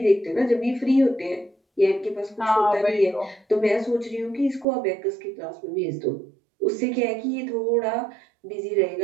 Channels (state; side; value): drops out; left; at 4.7 s